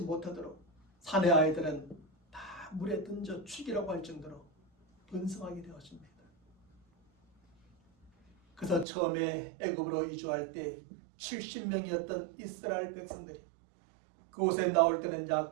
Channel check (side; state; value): left; drops out; at 8.8 s